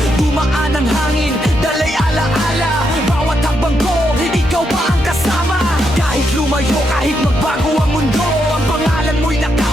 Dumaan ang hangin, dalay alaala, bawat hakbang ko, ikaw pa ang kasama. Kahit lumayo, kahit magbago ang mundo, ang pangalan mo'y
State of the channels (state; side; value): normal; both; correlation 0.80